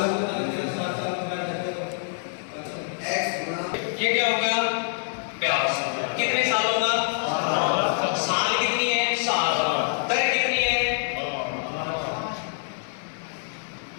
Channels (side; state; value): right; silent; digital silence